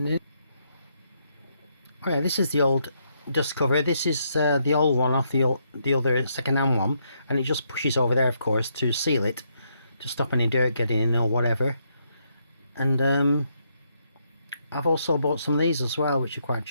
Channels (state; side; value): inverted; both; correlation -0.76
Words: Alright, this is the old dust cover. This is the old one off the other second-hand one, and it just pushes over there, of course, to seal it, to stop any dirt getting in or whatever. And I've also bought some of these as well, which are quite